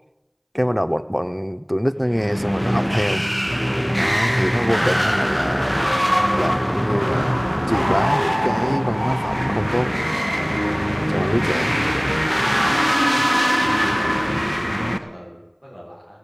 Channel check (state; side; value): identical; both; correlation 1.00